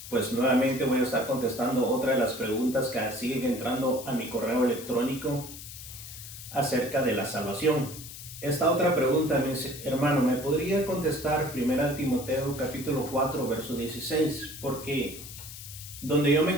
Pues nuevamente voy a estar contestando otra de las preguntas que siguen entrando a mi correo electrónico acerca de la salvación. Esta otra pregunta me dice: hermano, ¿me podría contestar 1 Timoteo capítulo 4 verso 16? Porque donde yo me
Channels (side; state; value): left; noise; hiss, 13 dB below the sound